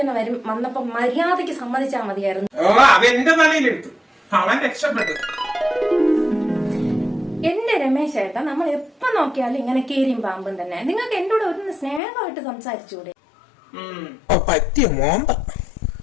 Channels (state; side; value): drops out; right; at 12.0 s